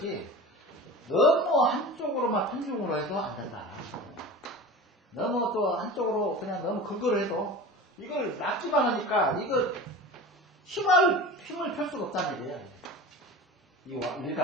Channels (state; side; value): normal; both; correlation 0.35